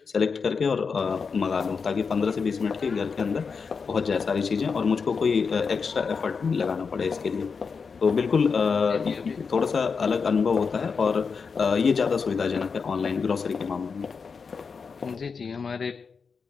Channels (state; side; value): quieter; right; 5.4 dB